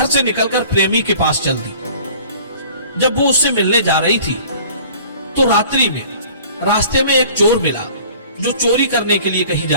से निकलकर प्रेमी के पास चल दी। जब वो उससे मिलने जा रही थी तो रात्रि में रास्ते में एक चोर मिला जो चोरी करने के लिए कहीं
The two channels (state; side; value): inverted; both; correlation -0.48